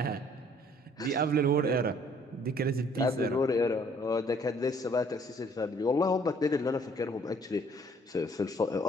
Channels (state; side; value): normal; both; correlation 0.60